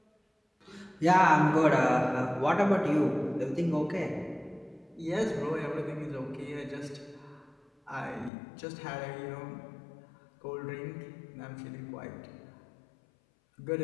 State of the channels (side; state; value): right; drops out; at 8.3 s